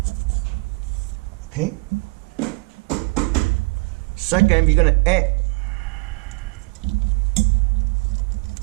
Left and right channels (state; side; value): quieter; left; 27.7 dB